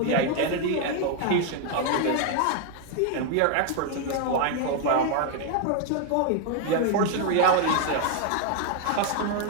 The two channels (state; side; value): different; both; correlation 0.00